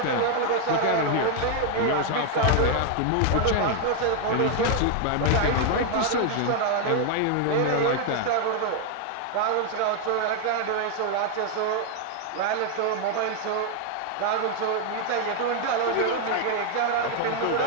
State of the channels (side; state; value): both; different; correlation 0.00